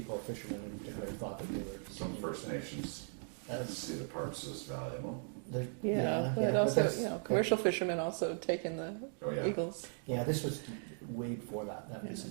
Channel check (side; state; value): left; silent; 52 dB below the other